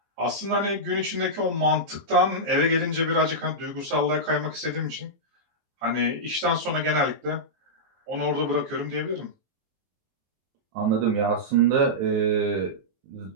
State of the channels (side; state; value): left; late; 23 ms